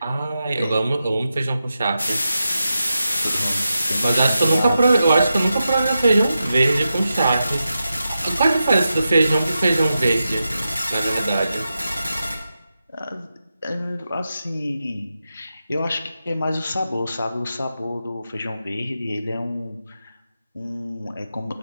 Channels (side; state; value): both; inverted; correlation -0.90